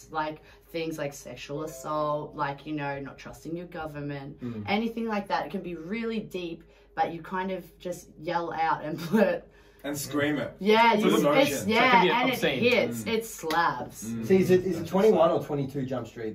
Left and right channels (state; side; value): identical; both; correlation 1.00